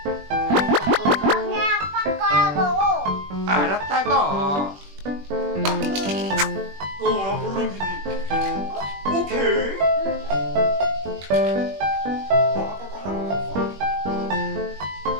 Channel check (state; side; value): late; left; 21 ms